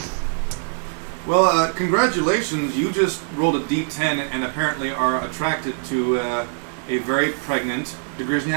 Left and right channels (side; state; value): left; silent; 61 dB below the other